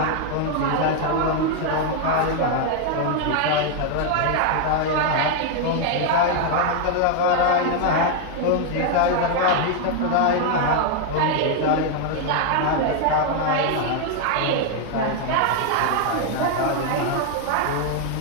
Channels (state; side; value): different; both; correlation 0.00